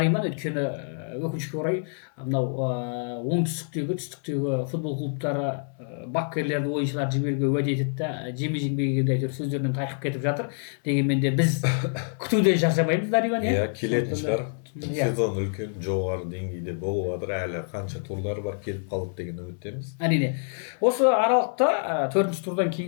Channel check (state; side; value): silent; right; 61 dB below the other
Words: өйткені өкінішке орай мынау оңтүстіктегі түстіктегі футбол клубтары бапкерлерді ойыншыларды жіберуге уәде етеді да жеме-жембегенде әйтеуір сөздерінен тайқып кетіп жатыр. Дегенмен де біз күтуден шаршамаймыз, Нариман. Иә, келетін шығар. Сезон үлкен жоғары деңгейде болып жатыр, әлі қанша турлар бар, келіп қалдық деген үміттеміз. Әрине. Осы аралықта 4-ші турдан